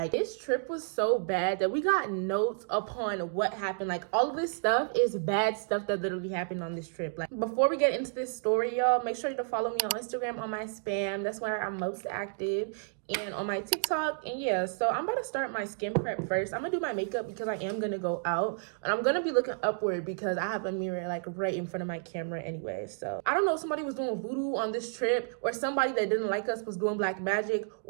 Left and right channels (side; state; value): left; silent; digital silence